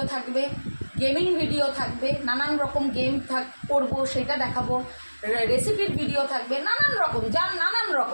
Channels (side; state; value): both; inverted; correlation -1.00